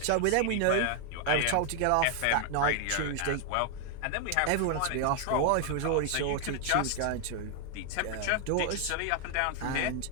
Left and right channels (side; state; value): both; different; correlation 0.00